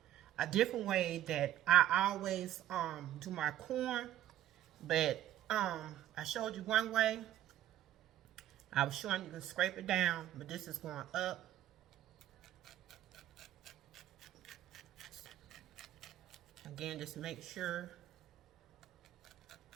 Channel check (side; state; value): left; quieter; 12.8 dB